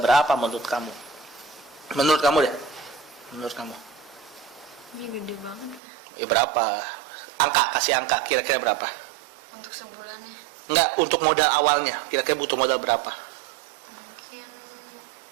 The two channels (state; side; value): drops out; left; at 5.8 s